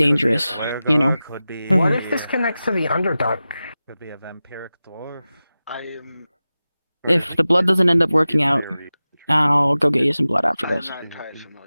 you know? Could be. What if this connects to the Underdark? Could be a vampiric dwarf. I am. If the blood doesn't end up working out, I'll go get you some blood after I'm this. not entirely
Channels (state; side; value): inverted; both; correlation -0.95